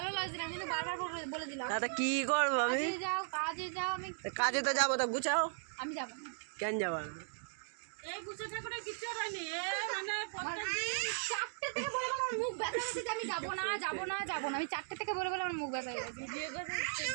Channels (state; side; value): silent; left; digital silence